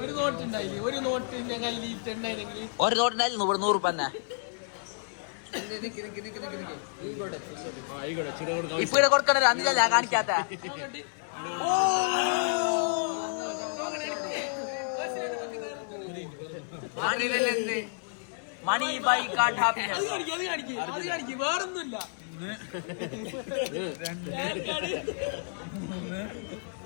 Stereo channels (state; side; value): silent; right; digital silence